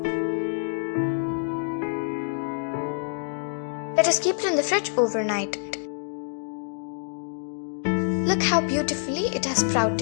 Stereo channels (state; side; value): silent; right; digital silence